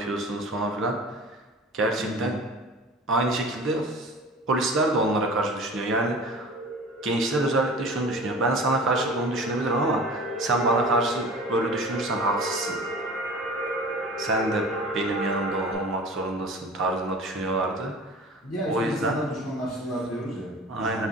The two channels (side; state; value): both; normal; correlation 0.40